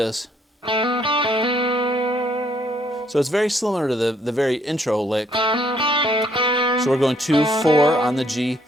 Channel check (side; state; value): both; normal; correlation 0.67